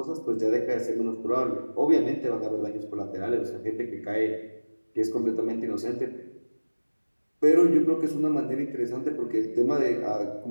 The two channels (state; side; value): inverted; both; correlation -1.00